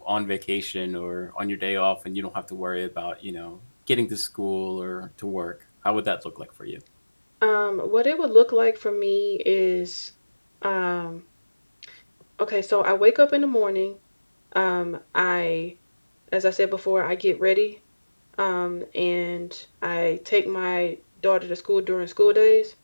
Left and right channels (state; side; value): inverted; both; correlation -1.00